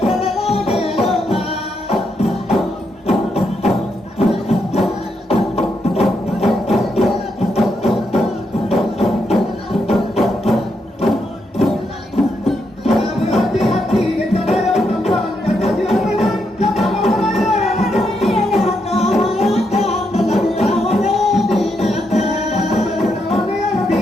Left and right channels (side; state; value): both; normal; correlation 0.80